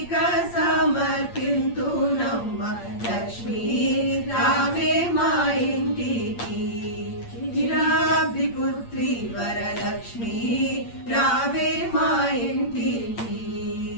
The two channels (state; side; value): late; right; 8.7 ms